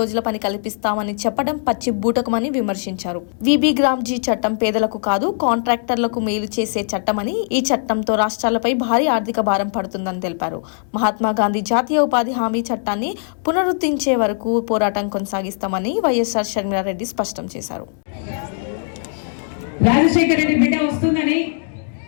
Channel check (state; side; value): silent; right; digital silence